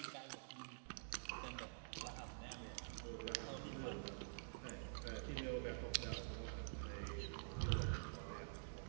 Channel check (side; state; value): left; silent; digital silence